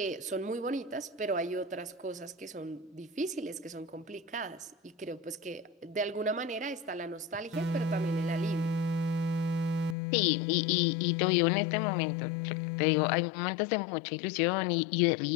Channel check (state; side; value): drops out; right; at 10.0 s